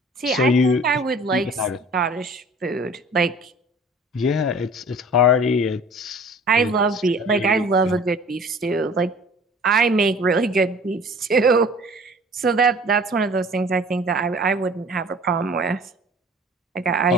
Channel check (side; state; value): both; normal; correlation 0.47